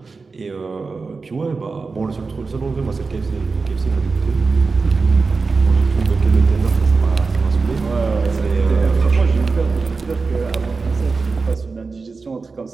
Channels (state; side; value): quieter; left; 4.3 dB